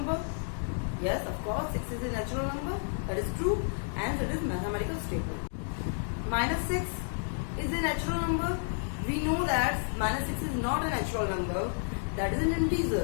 Yes, of course, 6 is a natural number. That is true, and that is mathematical statement. -6 is a natural number. We know that -6 is not a natural number. That is an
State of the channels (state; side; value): silent; right; digital silence